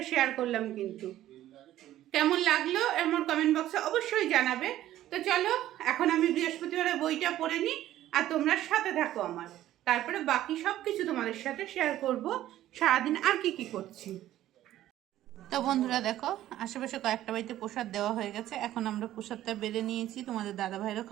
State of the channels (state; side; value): quieter; left; 13.4 dB